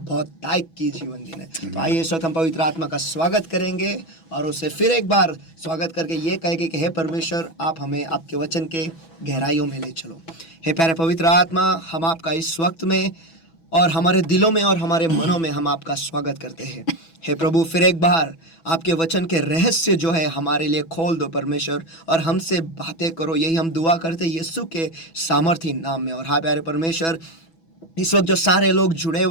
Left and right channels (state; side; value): late; right; 6.1 ms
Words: ताइक की जीवन देने। तो आइए इस वक्त हम पवित्र आत्मा का स्वागत करेंगे और उसे फिर एक बार स्वागत करके ये कहेंगे कि हे परमेश्वर, आप हमें आपके वचन के गहराइयों में ले चलो। हे प्यारे पवित्र आत्मा, हम आपका इस वक्त में और हमारे दिलों में और हमारे मनों में हम आपका स्वागत करते हैं। हे प्रभु, फिर एक बार आपके वचन के रहस्य जो है हमारे लिए खोल दो परमेश्वर, और हमसे बातें करो। यही हम दुआ करते हैं यीशु के सामर्थी नाम में। और हाँ प्यारे परमेश्वर, इस वक्त जो सारे लोग जुड़े